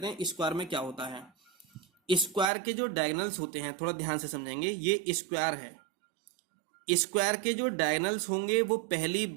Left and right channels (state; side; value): drops out; left; at 2.5 s